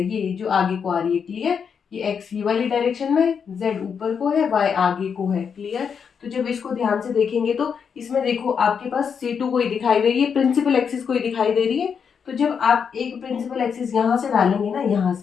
ये जो आगे को आ रही है। क्लियर, ये एक्स ये वाली डायरेक्शन में, जेड ऊपर को है, वाई आगे को है। क्लियर, तो जब इसको ध्यान से देखेंगे तो इसमें देखो आपके पास C2 कोई दिखाई दे रही है, प्रिंसिपल एक्सिस कोई दिखाई दे रही है। तो जब आप एक प्रिंसिपल एक्सिस यहाँ से डालेंगे ना, यहाँ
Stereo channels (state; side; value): quieter; right; 6.7 dB